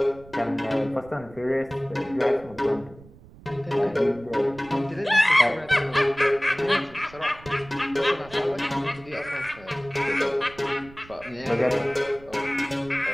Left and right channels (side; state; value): right; noise; rumble, 21 dB below the sound